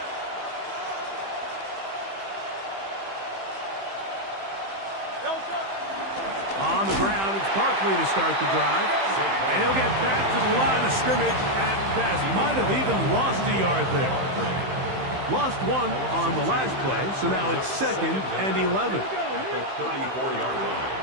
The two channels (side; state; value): left; late; 15 ms